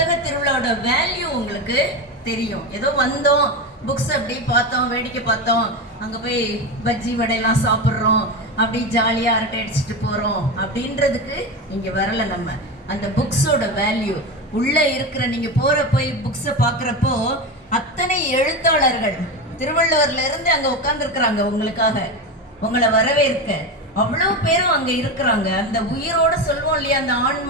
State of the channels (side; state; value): both; normal; correlation 0.19